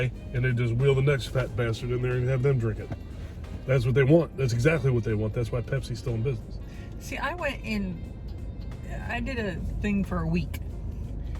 And they just wheel the next fat bastard in there and have them drink it. That's what they want. That's exactly what they want. That's why Pepsi's still in business. See, I did a thing for a week.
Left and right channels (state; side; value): identical; both; correlation 1.00